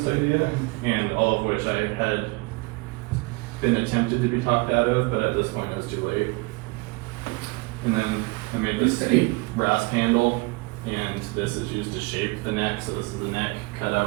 idea, and all of which I had been attempted to be talked out of, but at this point it was too late. And then I made this rasp handle, and this is used to shape the neck, so this is the neck, cut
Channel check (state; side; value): quieter; left; 26.2 dB